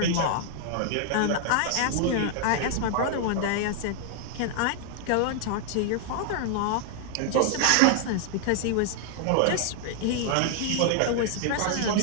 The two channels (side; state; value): both; different; correlation 0.00